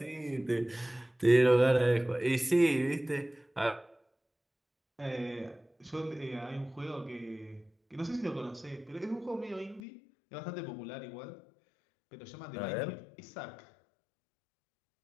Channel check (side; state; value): right; drops out; at 9.8 s